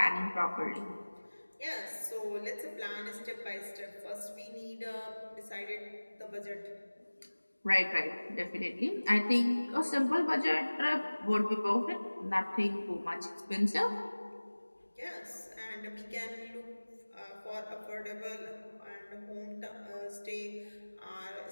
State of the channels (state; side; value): inverted; both; correlation -1.00